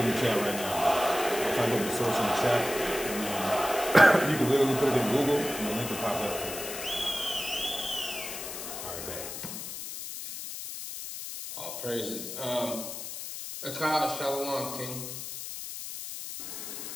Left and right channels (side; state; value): left; noise; hiss, 8 dB below the sound